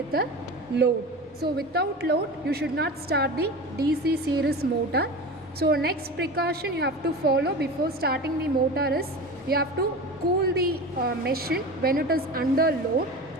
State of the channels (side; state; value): both; normal; correlation 0.30